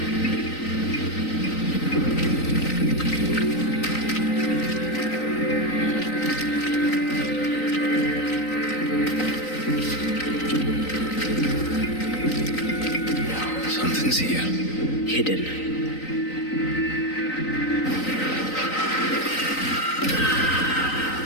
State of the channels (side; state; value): right; late; 3.9 ms